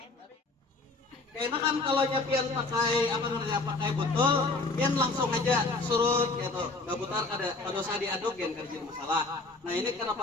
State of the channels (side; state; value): right; quieter; 3.4 dB